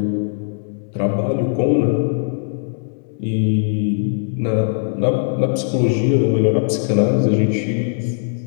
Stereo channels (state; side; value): silent; right; digital silence